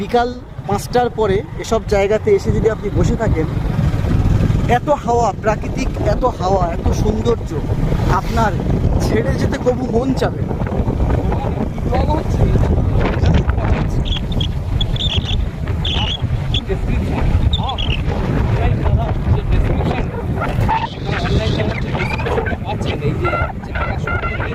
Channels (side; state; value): both; identical; correlation 1.00